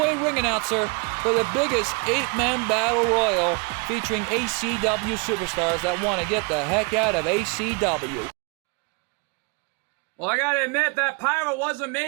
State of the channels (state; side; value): quieter; left; 32.3 dB